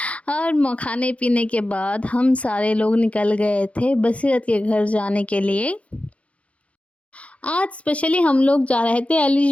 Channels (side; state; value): right; late; 0.063 ms